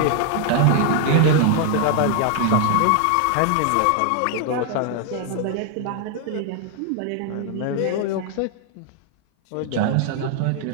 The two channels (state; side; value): different; both; correlation 0.00